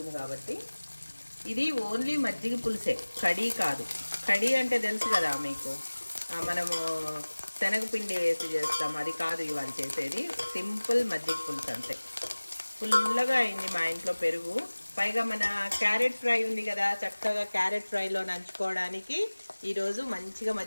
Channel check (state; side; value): inverted; both; correlation -1.00